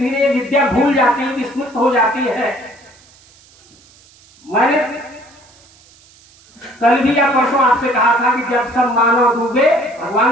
विद्या भूल जाती है, विस्मृत हो जाती है। मैंने कल भी या परसों आपसे कहा था कि जब सब मानव डूबे,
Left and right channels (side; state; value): right; noise; hiss, 28 dB below the sound